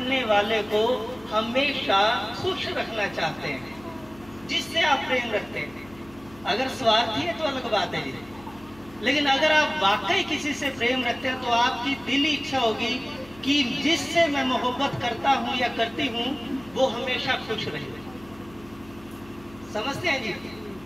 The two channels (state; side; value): noise; left; hum, 23 dB below the sound